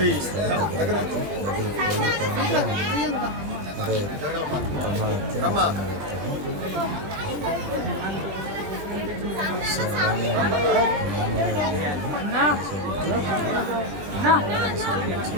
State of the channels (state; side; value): late; left; 20 ms